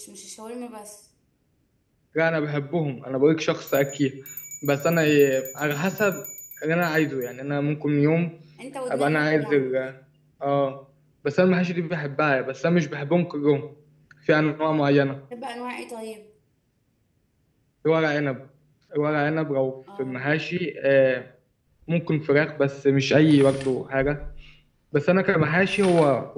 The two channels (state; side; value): identical; both; correlation 1.00